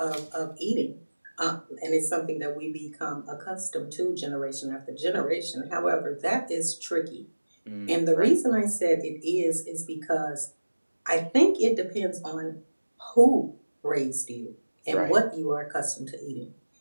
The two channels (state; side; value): inverted; both; correlation -1.00